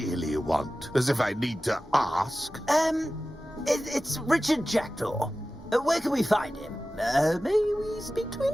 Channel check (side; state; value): both; normal; correlation 0.95